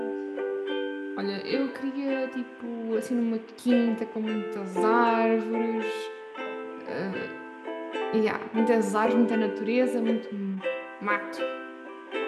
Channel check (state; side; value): identical; both; correlation 1.00